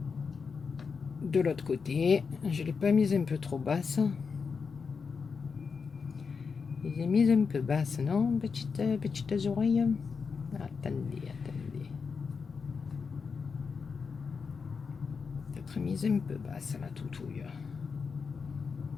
de l'autre côté. Je ne l'ai pas mise un peu trop basse. Je l'ai mise un peu basse, non? Petites oreilles. Attendez. Peut-être mise un peu basse, la toutouille.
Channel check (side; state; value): right; quieter; 5.4 dB